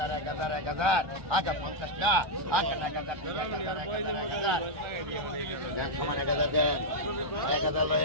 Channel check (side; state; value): left; late; 1.2 ms